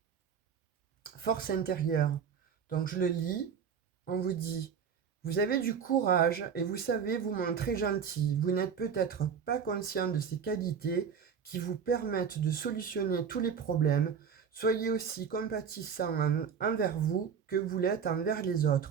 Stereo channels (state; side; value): quieter; left; 7.0 dB